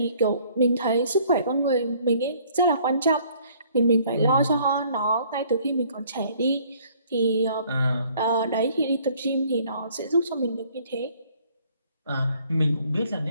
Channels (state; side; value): inverted; both; correlation -0.59